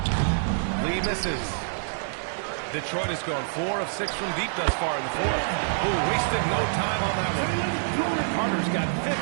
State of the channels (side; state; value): left; silent; 57 dB below the other